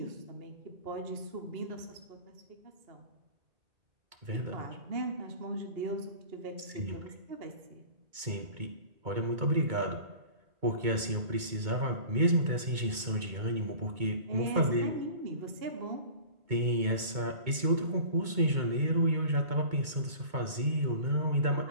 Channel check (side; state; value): left; late; 2.2 ms